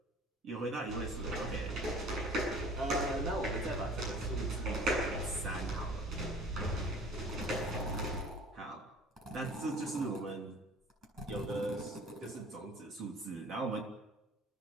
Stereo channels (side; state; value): both; normal; correlation 0.47